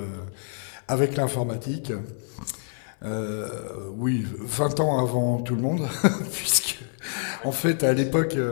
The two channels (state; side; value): silent; right; digital silence